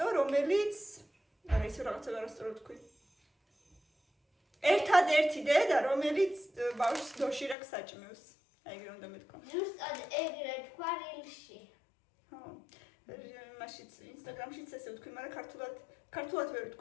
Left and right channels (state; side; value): drops out; right; at 7.6 s